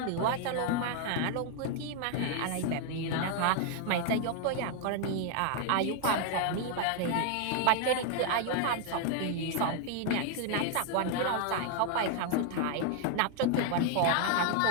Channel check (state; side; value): different; both; correlation 0.00